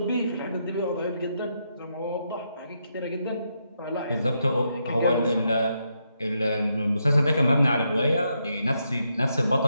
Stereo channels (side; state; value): both; inverted; correlation -0.80